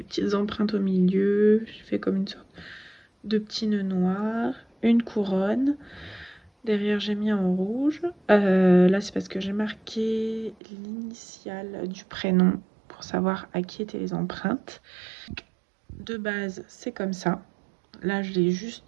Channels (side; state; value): left; drops out; at 10.6 s